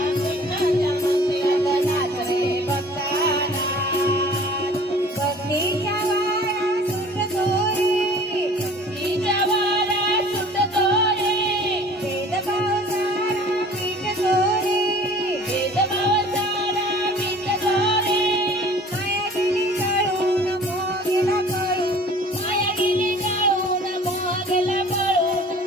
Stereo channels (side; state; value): both; normal; correlation 0.48